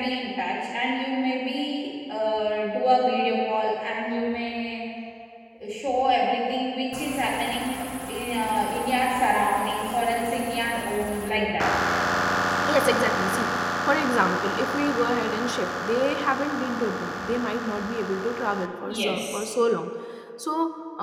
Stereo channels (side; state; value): both; identical; correlation 1.00